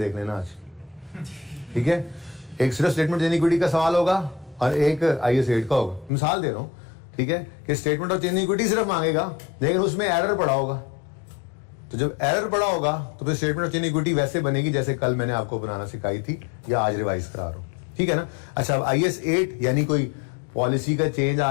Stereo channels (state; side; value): drops out; right; at 6.1 s